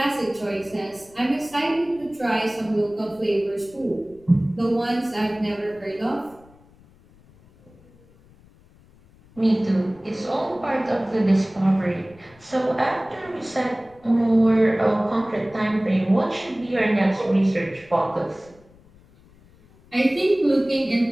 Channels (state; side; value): noise; left; rumble, 27 dB below the sound